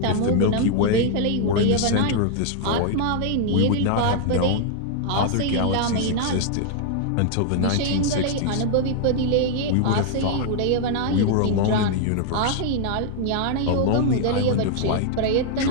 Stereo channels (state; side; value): different; both; correlation 0.00